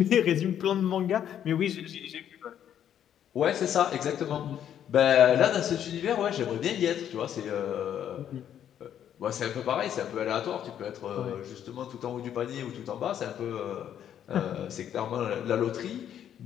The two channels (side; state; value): right; quieter; 9.9 dB